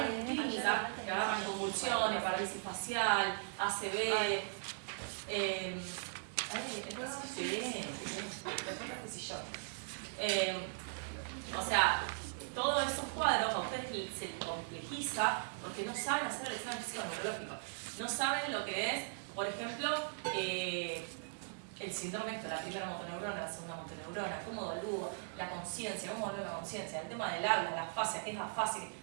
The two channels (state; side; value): silent; left; digital silence